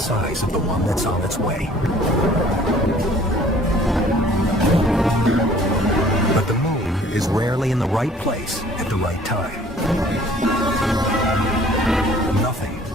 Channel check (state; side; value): normal; both; correlation 0.54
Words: of the one that's on its way. But the moon is rarely in the right place at the right time. Nothing